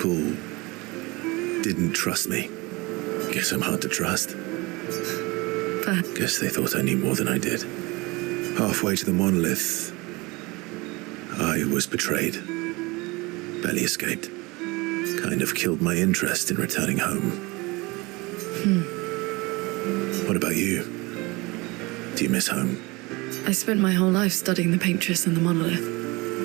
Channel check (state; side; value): quieter; left; 24.2 dB